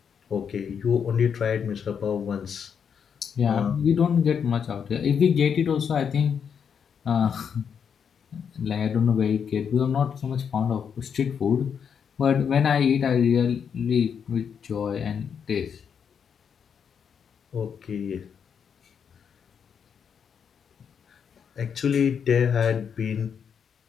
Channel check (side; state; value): right; quieter; 7.2 dB